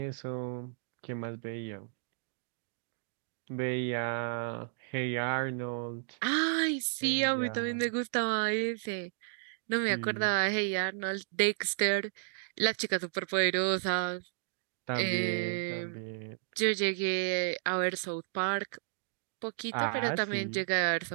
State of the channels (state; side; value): silent; left; digital silence